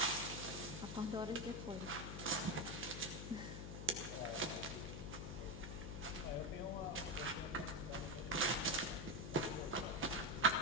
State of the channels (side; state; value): left; noise; hum, 6 dB below the sound